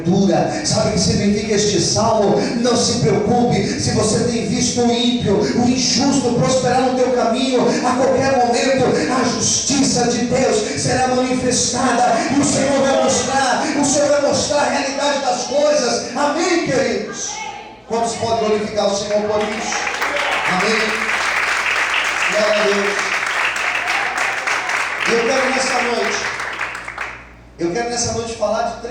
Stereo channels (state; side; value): identical; both; correlation 1.00